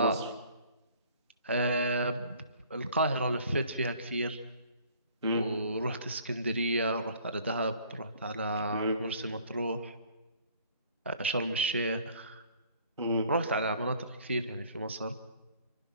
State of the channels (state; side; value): inverted; both; correlation -0.55